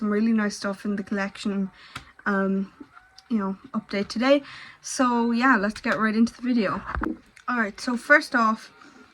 really nice stuff in the collection. Update today. So yeah, let's get right into the video. Alright, so first off,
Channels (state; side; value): identical; both; correlation 1.00